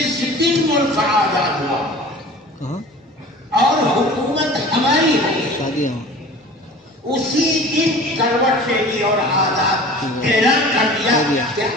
دن ملک آزاد ہوا اور حکومت ہماری ہوئی، اسی دن کروٹ لے لی اور آزاد اعلان کر دیا کہ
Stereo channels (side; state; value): both; normal; correlation 0.42